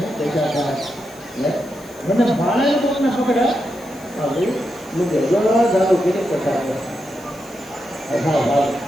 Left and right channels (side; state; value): left; noise; hiss, 24 dB below the sound